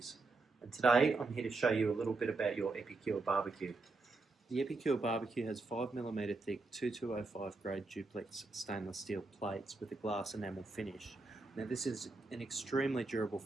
and today I'm here to show you a little bit about your Epicure BBQ. The Epicure BBQ has 5mm thick 2205 grade duplex stainless steel plates with a glass enamel finish. Now this is an extremely durable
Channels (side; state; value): left; quieter; 3.6 dB